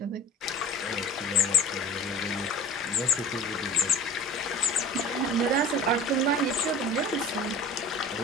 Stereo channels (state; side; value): normal; both; correlation 0.38